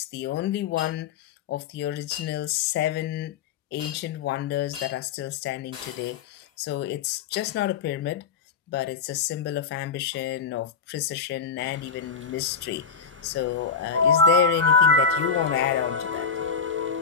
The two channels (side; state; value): right; quieter; 5.9 dB